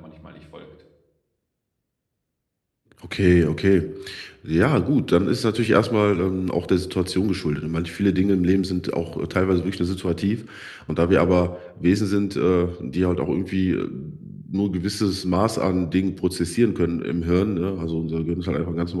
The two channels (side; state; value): both; identical; correlation 1.00